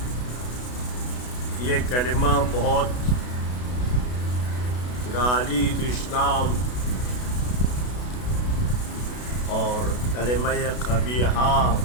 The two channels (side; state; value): right; late; 32 ms